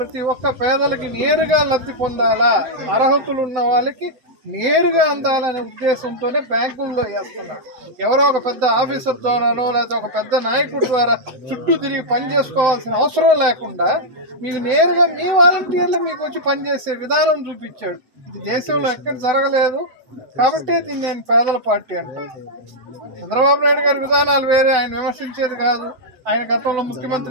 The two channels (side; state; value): left; late; 7.9 ms